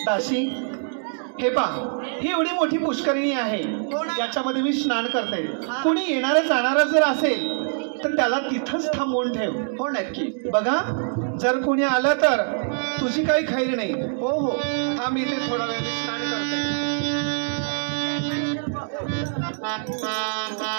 दासी, हे पहा, ही एवढी मोठी पुष्करिणी आहे. याच्यामध्ये मी स्नान करते. कुणी येणारा जाणारा जर असेल तर त्याला तिथंच थांबवून ठेव. हो नक्की. बघा, जर कोणी आलं तर तुझी काही खैर नाही. हो हो. थांब इथे थोडा वेळ, मी स्नान करते.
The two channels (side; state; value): left; silent; digital silence